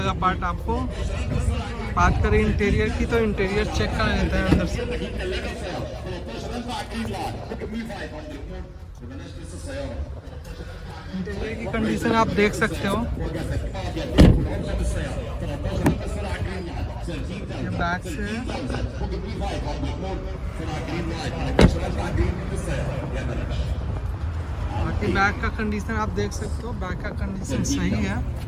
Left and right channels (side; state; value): both; identical; correlation 1.00